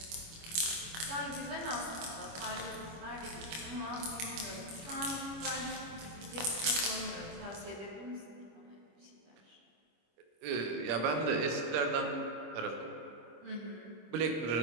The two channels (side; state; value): left; late; 25 ms